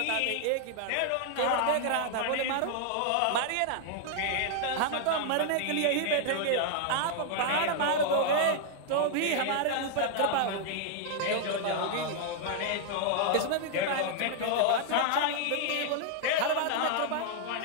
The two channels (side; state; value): both; different; correlation 0.00